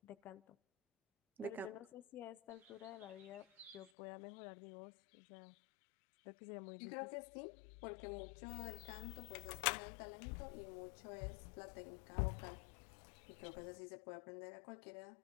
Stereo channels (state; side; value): drops out; right; at 3.9 s